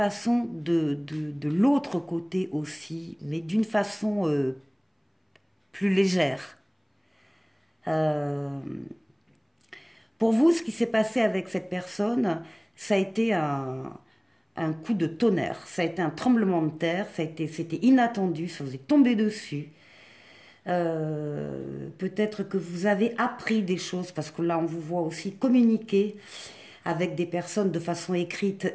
de l'autre côté aussi, mais d'une façon plus légère. Pour vous, ce qui s'est passé avec cette personne, ça a été un coup de tonnerre, ça a été un tremblement de terre, c'était inattendu, ça vous est tombé dessus. Peut-être que vous avez appris des choses, parce que là, on vous voit aussi communiquer avec des personnes de façon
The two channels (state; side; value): identical; both; correlation 1.00